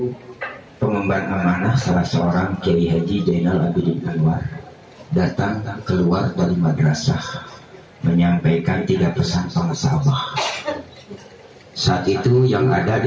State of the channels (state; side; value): identical; both; correlation 1.00